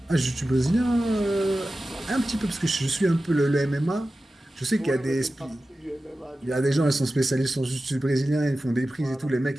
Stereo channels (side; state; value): both; normal; correlation 0.94